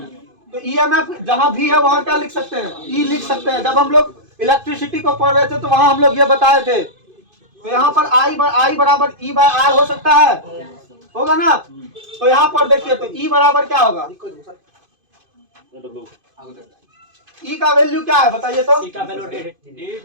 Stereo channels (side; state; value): left; late; 2.5 ms